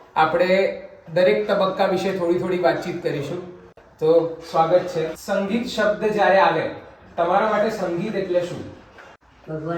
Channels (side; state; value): both; identical; correlation 1.00